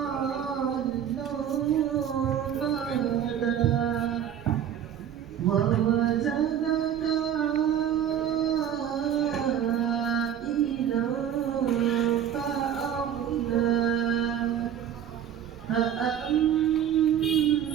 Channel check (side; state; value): left; quieter; 9.4 dB